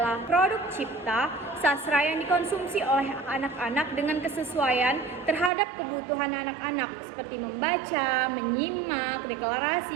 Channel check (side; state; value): left; drops out; at 5.5 s